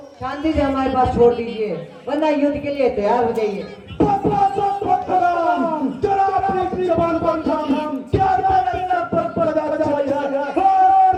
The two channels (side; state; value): both; identical; correlation 1.00